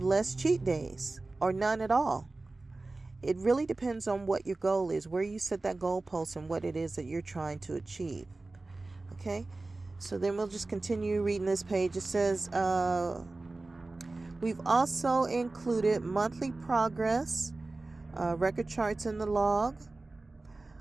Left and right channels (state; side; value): quieter; left; 3.2 dB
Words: less cheat days or none at all. It really depends on what your goal is, where you set that goalpost, and what it is that you're trying to achieve. Okay? So then we'll just continue reading this page. It says, we've also included monthly progress record charts in the log.